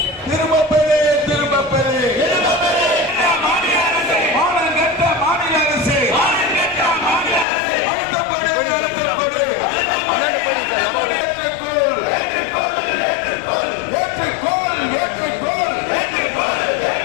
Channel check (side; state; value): right; drops out; at 7.5 s